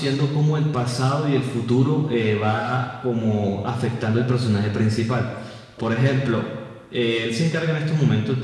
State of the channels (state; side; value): identical; both; correlation 1.00